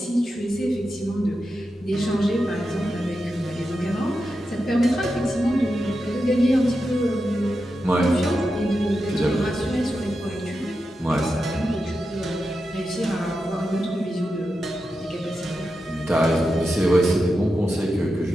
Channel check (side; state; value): both; normal; correlation 0.89